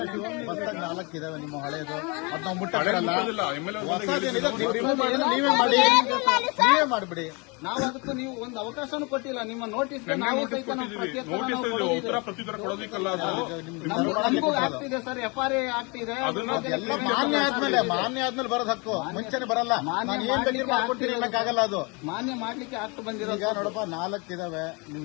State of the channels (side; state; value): right; quieter; 29.8 dB